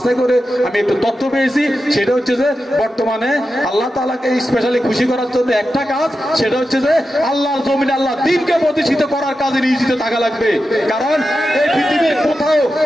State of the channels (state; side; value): normal; both; correlation 0.90